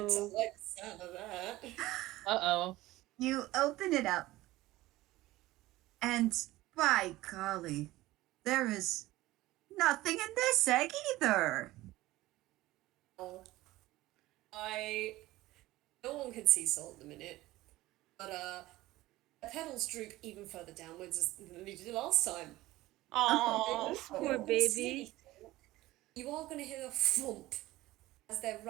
Good. I like the sound of that. Uh-oh. You open it up, and by golly, there is nothing in this egg either. No one can see Sol at the minute, but the petals droop even further downwards than they did last time. Oh, Poor baby. You are going to hear a thump as their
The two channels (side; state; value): left; quieter; 17.6 dB